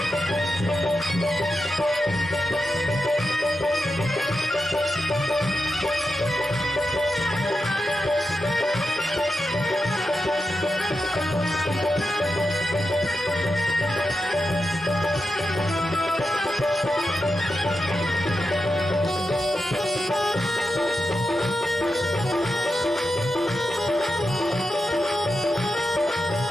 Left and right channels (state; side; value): normal; both; correlation 0.89